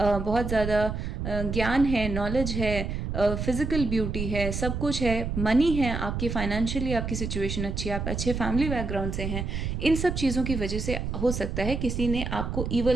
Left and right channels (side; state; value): right; noise; rumble, 3 dB below the sound